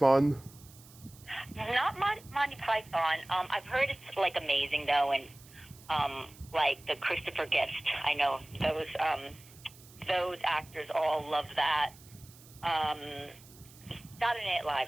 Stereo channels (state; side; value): noise; right; hiss, 22 dB below the sound